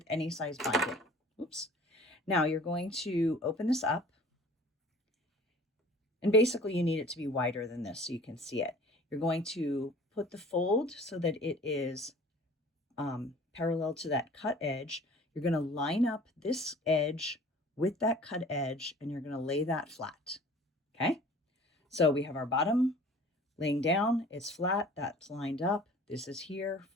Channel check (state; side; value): normal; both; correlation 0.47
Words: any size binding. Oops. Now you're going to open this up. And basically you need it to be wider than this so you can see it. You're going to put the fold so that it is parallel to that cut edge. You're going to line up this edge with that cut edge and you're going to lay that flat. Okay. So we have our bottom laying down. It's flat. That's lined up. This is here.